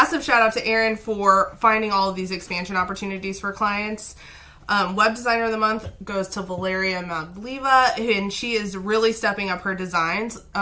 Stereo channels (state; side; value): identical; both; correlation 1.00